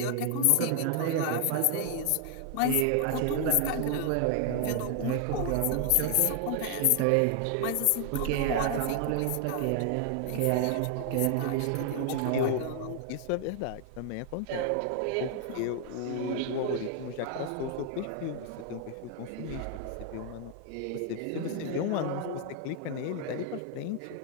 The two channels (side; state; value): both; different; correlation 0.00